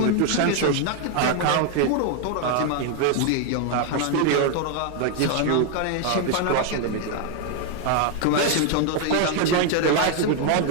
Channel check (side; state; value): both; different; correlation 0.00